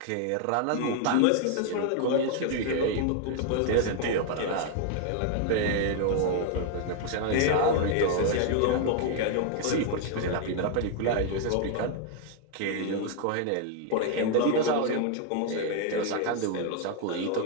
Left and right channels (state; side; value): different; both; correlation 0.00